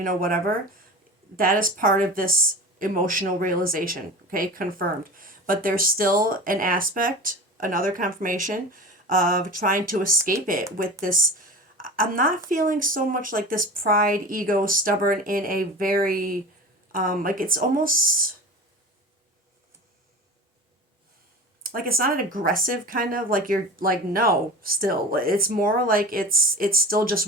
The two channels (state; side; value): normal; both; correlation 0.33